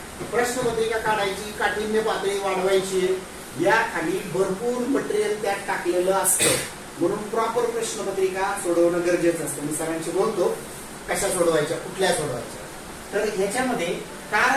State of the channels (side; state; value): both; identical; correlation 1.00